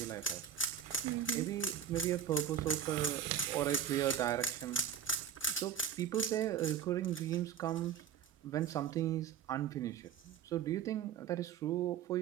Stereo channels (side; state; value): left; quieter; 8.5 dB